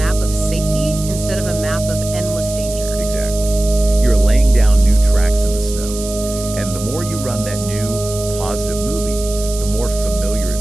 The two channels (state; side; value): noise; right; hiss, 11 dB below the sound